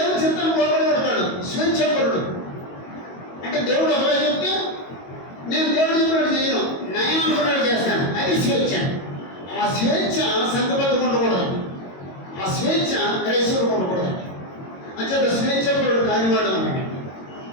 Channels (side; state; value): right; late; 22 ms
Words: చిత్తాన్ని లోపడబడతాడు. స్వేచ్ఛాపరుడు అంటే దేవుడు ఒకవేళ చెప్తే నేను దేవుడు చెప్పినట్టు చేయను, నయం అనుకున్నాడు చేస్తాను. అది స్వేచ్ఛ. ఆ స్వేచ్ఛ సంఘబద్ధంగా ఉండకూడదు. ఆ స్వేచ్ఛ క్రైస్తవులకు ఉండకూడదు. అంచేత స్వేచ్ఛాపరుడు కానివాడు అన్నాడు.